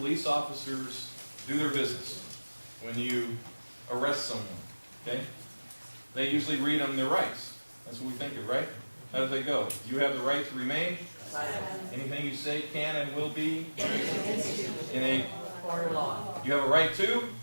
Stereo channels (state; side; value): inverted; both; correlation -1.00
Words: officers do their business when you arrest someone. Okay? They usually read them their rights. That's what we think of, right? How do they go? You have the right to remain. Anything you say can and will be in a Court of law. You have a right to?